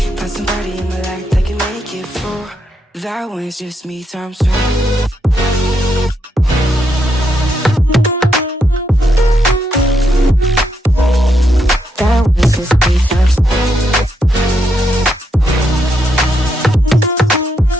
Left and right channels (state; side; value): normal; both; correlation 0.79